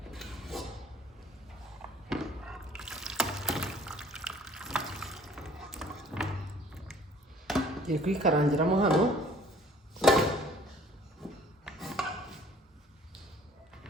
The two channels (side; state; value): both; normal; correlation 0.54